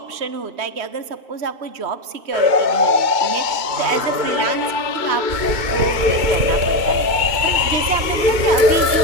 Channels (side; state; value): left; late; 2.9 ms